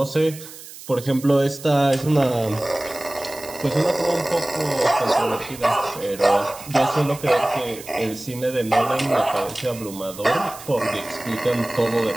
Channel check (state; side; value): noise; right; hiss, 16 dB below the sound